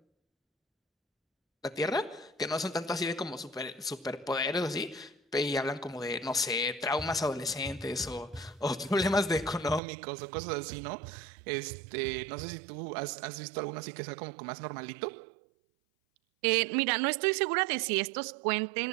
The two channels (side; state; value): left; drops out; at 9.8 s